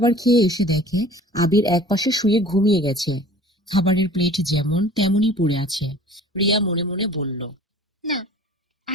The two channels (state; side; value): normal; both; correlation 0.46